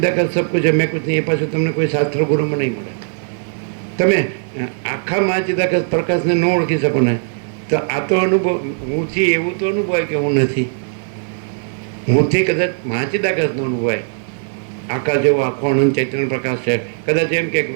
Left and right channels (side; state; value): left; silent; digital silence